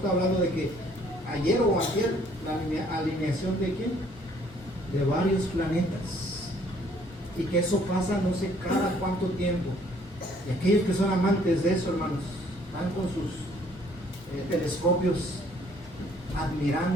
hablando de que ayer o ayer la alineación de quién, de varios planetas, y que eso pasa no sé cada cuánto tiempo. Y aquellos que son amantes de eso, hermanos, están con sus telescopios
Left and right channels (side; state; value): both; normal; correlation 0.61